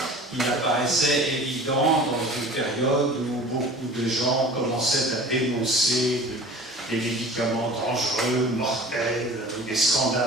il apparaissait évident dans une période où beaucoup de gens commençaient à dénoncer des médicaments dangereux, mortels, où des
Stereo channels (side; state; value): both; normal; correlation 0.41